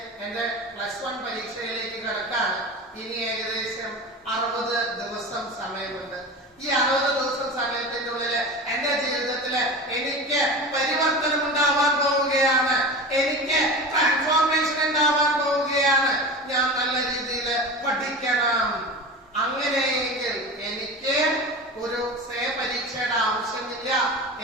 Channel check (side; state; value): both; normal; correlation 0.30